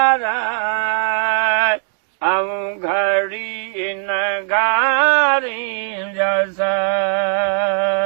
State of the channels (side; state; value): left; silent; 60 dB below the other